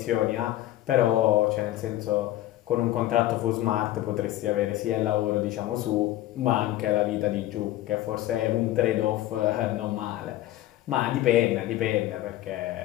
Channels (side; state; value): right; quieter; 14.6 dB